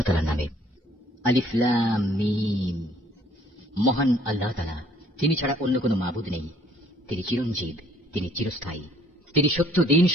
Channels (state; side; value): normal; both; correlation 0.61